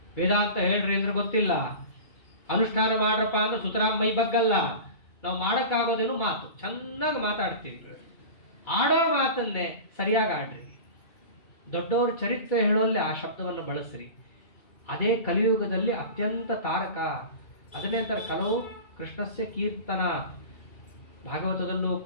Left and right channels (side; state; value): right; late; 2.3 ms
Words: ವೇದಾಂತ ಹೇಳ್ರಿ ಅಂದ್ರೆ ಗೊತ್ತಿಲ್ಲ, ಅನುಷ್ಠಾನ ಮಾಡ್ರಪ್ಪ ಅಂದ್ರೆ ಸುತರಾಮ್ ಮೈ ಬಗ್ಗಲ್ಲ. ನಾವು ಮಾಡೋಕ್ಕಾಗೋದೇನು ಮಾತು, ಚೆನ್ನಾಗಿ ಮಾತಾಡ್ತೀವಿ. ಆಡೋ ಮಾತನ್ನೇ ಸರಿಯಾಗಿ ಆಡ್ರಿ. ದೊಡ್ಡವ್ರ ಚರಿತ್ರೆ ಹೇಳೋಲ್ಲಿ ಆ ಶಬ್ದವನ್ನು ಬಳಸ್ರಿ. ಅದೇ ಕಲಿಯುಗದಲ್ಲಿ ಅತ್ಯಂತ ತಾರಕ. ಅದನ್ನೇ ಅಂತಾರೆ ಕಲವು ಕೃಷ್ಣಸ್ಯ ಕೀರ್ತನ. ಭಾಗವತದಲ್ಲೂ